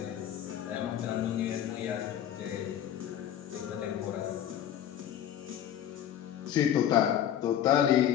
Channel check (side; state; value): right; quieter; 10.5 dB